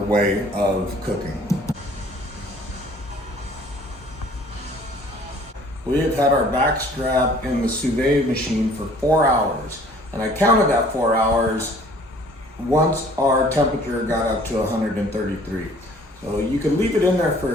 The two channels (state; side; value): normal; both; correlation 0.54